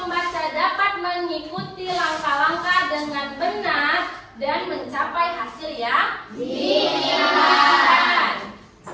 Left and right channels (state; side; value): identical; both; correlation 1.00